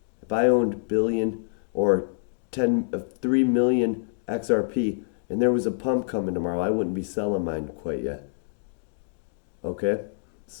if I owned billion or 3 million XRP and there was a pump coming tomorrow, I wouldn't be selling mine quite yet. Okay?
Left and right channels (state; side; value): silent; right; digital silence